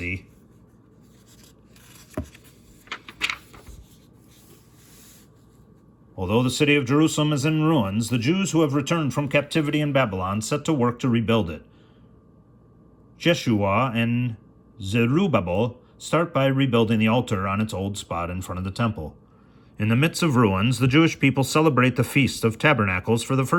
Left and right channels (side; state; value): both; identical; correlation 1.00